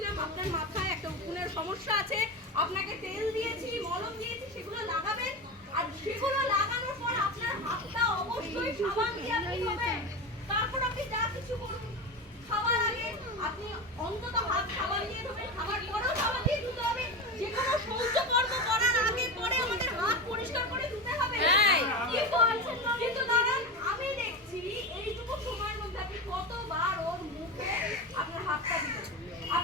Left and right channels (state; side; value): normal; both; correlation 0.22